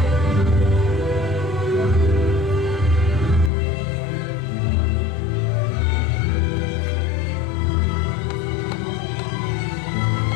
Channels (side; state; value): right; drops out; at 3.5 s